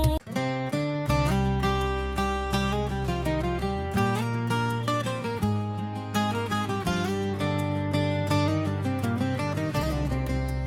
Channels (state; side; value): identical; both; correlation 1.00